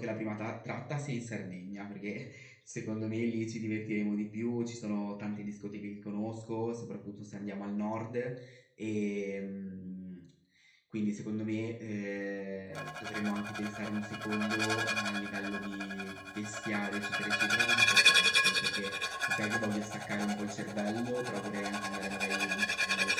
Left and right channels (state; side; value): identical; both; correlation 1.00